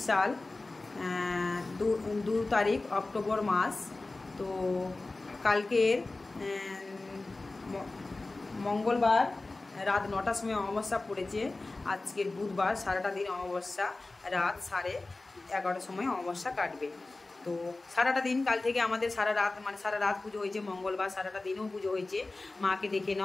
সাল 2 তারিখ অক্টোবর মাস। তো কালকের মঙ্গলবার রাত 9টার সময় অমাবস্যা পড়েছে। আজকের বুধবার সারাটা দিন অমাবস্যা, রাত 11:30 সময় অমাবস্যা কাটবে। তো সারাটা দিন কাল থেকে আমাদের সারা রাত পুজো হয়েছে। মঙ্গলবার সারাটা দিনও পুজো হয়েছে। মাকে দেখে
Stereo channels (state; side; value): quieter; right; 3.2 dB